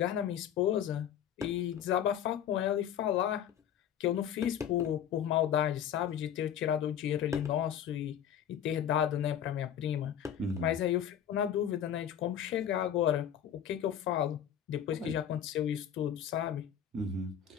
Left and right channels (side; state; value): right; quieter; 9.5 dB